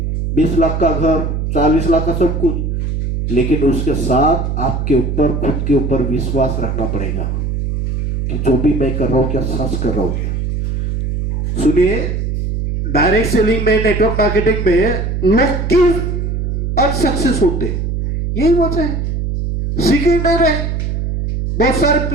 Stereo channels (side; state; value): right; noise; hum, 2 dB below the sound